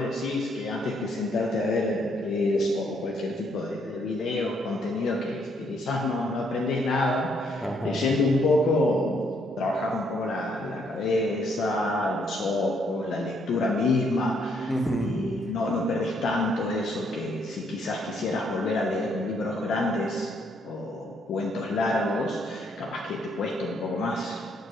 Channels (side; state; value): both; normal; correlation 0.71